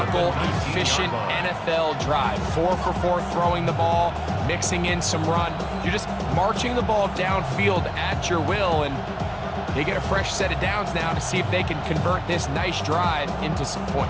efficient NFL drive. 4 for 4 throwing the ball, mixing in some run. You're just marching the ball downfield at your will, and they get a fresh set of downs now to see if they can convert this nice drive into some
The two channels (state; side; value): identical; both; correlation 1.00